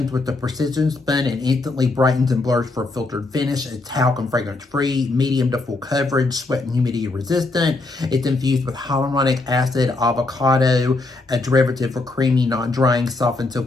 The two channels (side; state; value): right; quieter; 3.3 dB